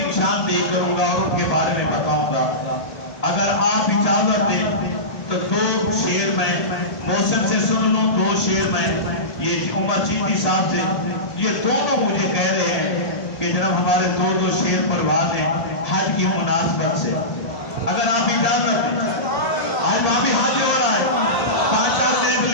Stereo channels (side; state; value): right; late; 1.8 ms